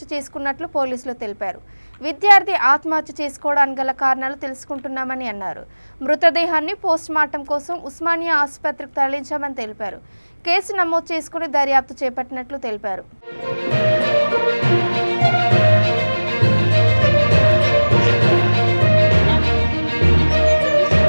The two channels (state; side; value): inverted; both; correlation -1.00